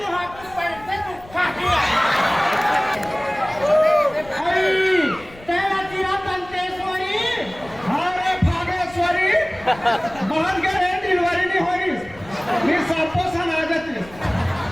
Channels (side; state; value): left; noise; rumble, 21 dB below the sound